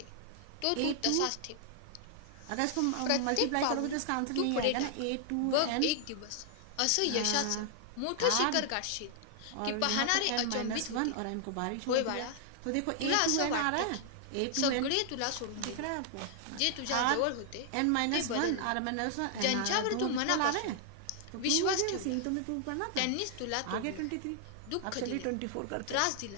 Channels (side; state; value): both; different; correlation 0.00